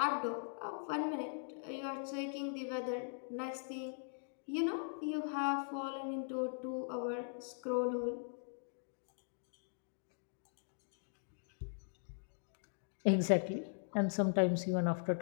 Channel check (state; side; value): silent; right; digital silence